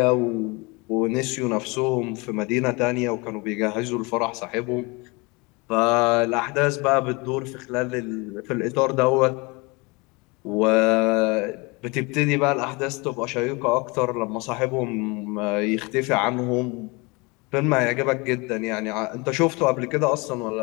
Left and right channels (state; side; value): quieter; right; 27.1 dB